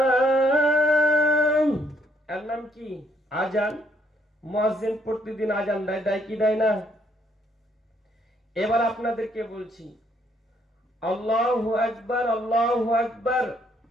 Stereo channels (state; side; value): normal; both; correlation 0.69